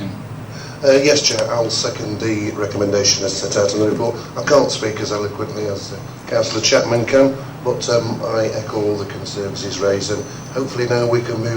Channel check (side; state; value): both; identical; correlation 1.00